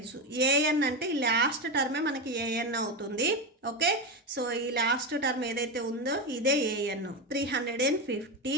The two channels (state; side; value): normal; both; correlation 0.15